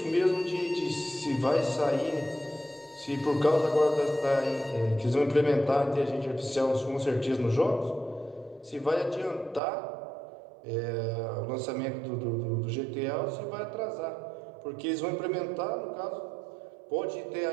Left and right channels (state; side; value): drops out; left; at 9.6 s